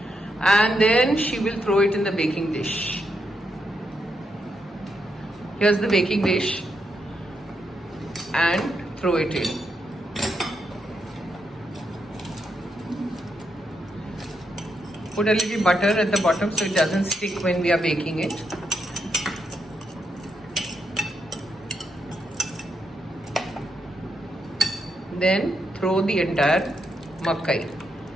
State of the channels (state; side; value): normal; both; correlation 0.81